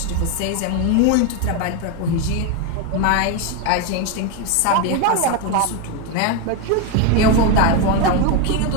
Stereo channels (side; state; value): both; different; correlation 0.02